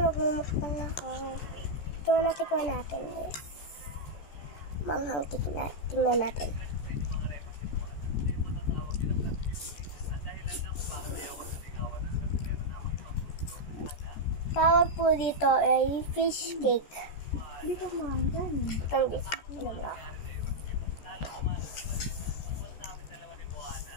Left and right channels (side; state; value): right; late; 14 ms